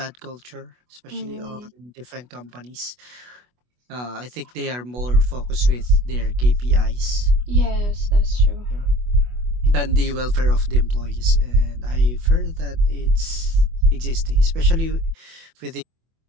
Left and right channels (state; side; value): late; left; 24 ms